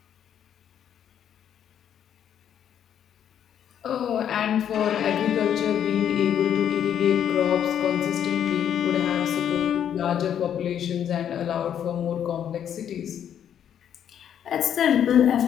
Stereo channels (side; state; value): right; quieter; 9.4 dB